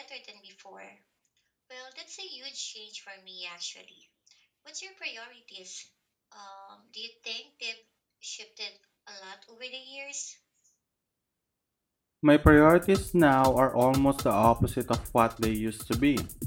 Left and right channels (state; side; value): identical; both; correlation 1.00